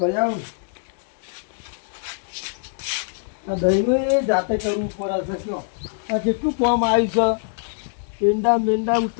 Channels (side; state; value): right; silent; 63 dB below the other